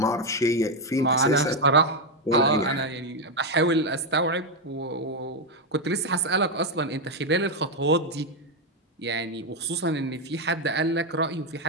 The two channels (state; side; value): normal; both; correlation 0.04